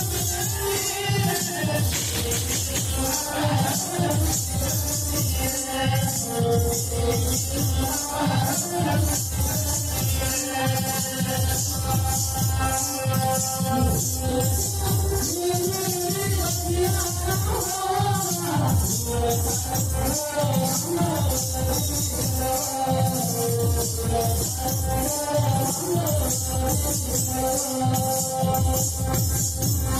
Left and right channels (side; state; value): both; identical; correlation 1.00